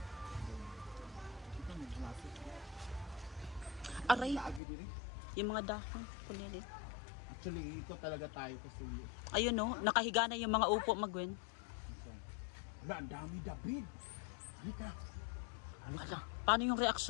Aray, yung mga dahon, kunyari. Actually, ito talaga tayo kasi. Ayun no, nakahiga na yung mga upo magwen. Wala, ang dami David. Halika. Ala, paano yung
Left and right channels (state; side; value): drops out; right; at 4.6 s